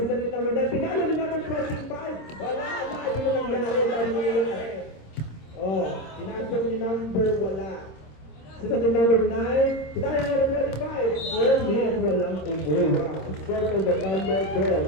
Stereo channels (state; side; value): late; right; 26 ms